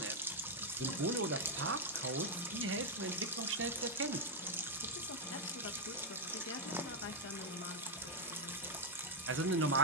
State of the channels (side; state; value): both; normal; correlation 0.00